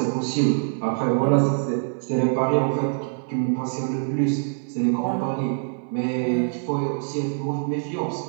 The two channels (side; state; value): left; silent; 62 dB below the other